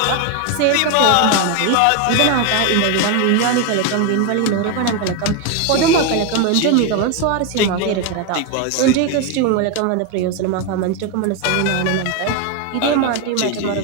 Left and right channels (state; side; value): different; both; correlation 0.02